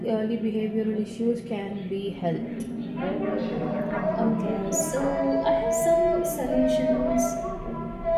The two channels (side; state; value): both; identical; correlation 1.00